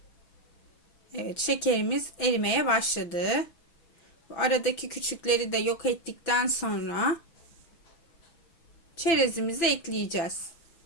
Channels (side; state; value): right; late; 6.0 ms